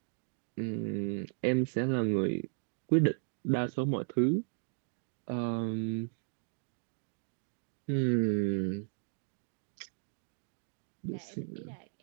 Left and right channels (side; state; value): left; silent; digital silence